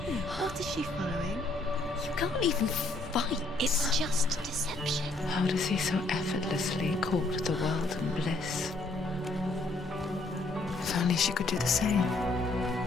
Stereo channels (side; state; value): right; quieter; 3.0 dB